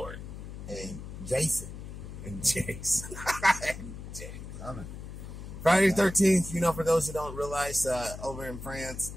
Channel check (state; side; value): noise; left; hum, 10 dB below the sound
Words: And Jason. And Jason. Coming. Friday the 13th, for those who don't realize, over in France,